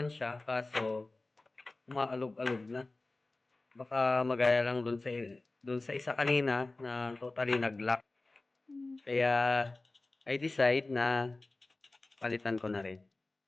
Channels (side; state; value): right; quieter; 3.1 dB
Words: siya kaso umaalog-alog na. Baka magaya lang dun sa isa kanina na totally nag-lock. Kaya I decide na palitan ko na rin.